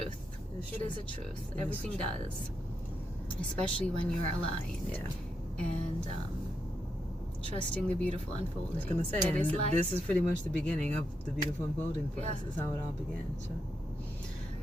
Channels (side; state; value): both; normal; correlation 0.83